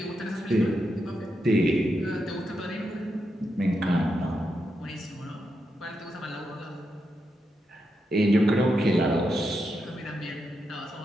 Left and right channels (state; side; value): normal; both; correlation 0.85